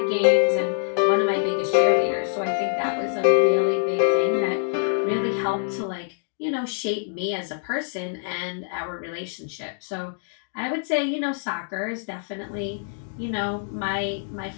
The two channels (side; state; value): right; silent; digital silence